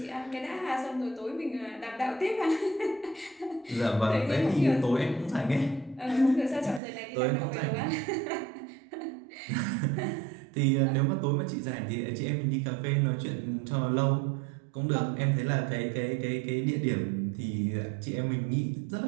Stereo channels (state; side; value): drops out; left; at 6.8 s